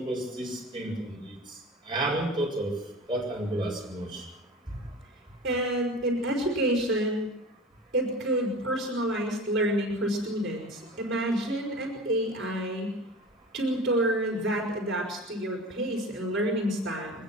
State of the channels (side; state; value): both; normal; correlation 0.36